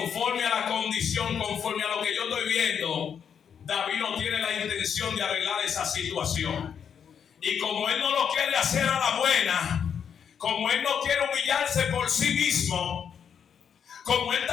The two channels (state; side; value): quieter; right; 7.6 dB